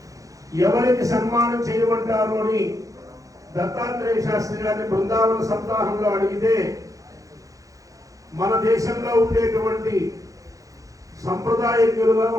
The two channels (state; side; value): late; left; 0.16 ms